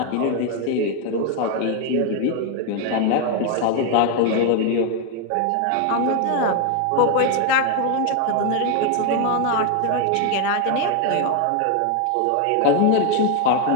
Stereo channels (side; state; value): both; different; correlation 0.01